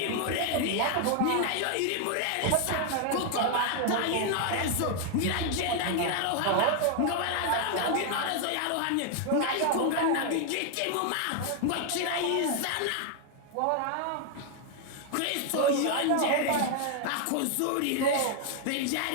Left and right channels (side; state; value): both; different; correlation 0.00